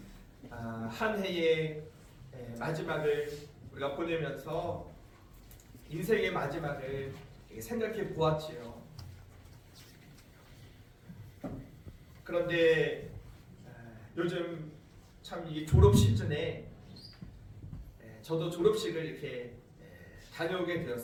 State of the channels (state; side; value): identical; both; correlation 1.00